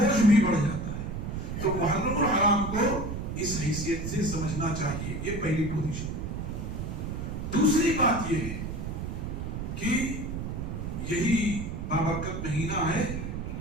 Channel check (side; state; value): right; noise; rumble, 5 dB below the sound